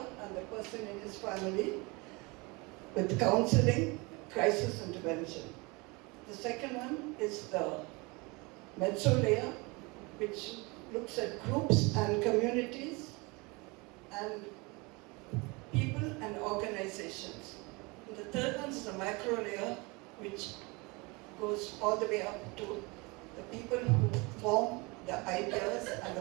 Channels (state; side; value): quieter; left; 26.7 dB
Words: and the person in his family with counseling, crisis intervention. The second one is the mezzo layer, which looks at groups and communities and people and organizations. And the third one is the macro layer, which goes all the way up to the people who form the ideas and